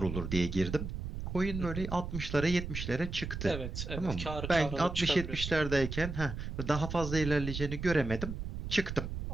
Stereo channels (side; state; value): right; noise; rumble, 6 dB below the sound